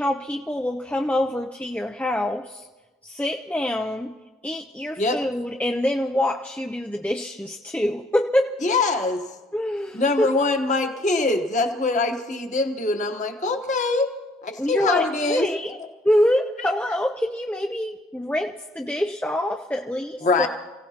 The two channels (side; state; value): both; normal; correlation 0.66